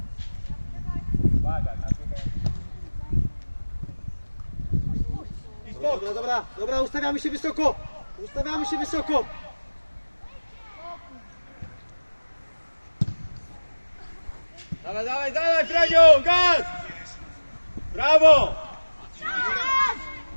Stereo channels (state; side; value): inverted; both; correlation -1.00